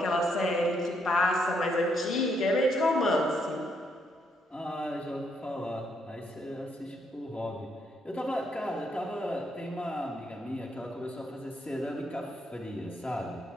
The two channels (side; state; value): both; normal; correlation 0.74